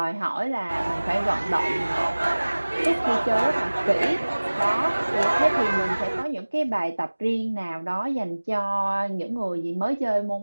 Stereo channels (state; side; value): inverted; both; correlation -1.00